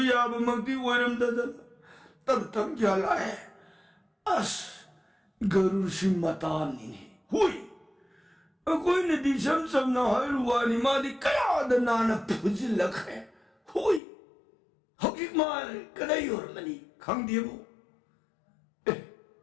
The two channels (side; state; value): right; drops out; at 14.0 s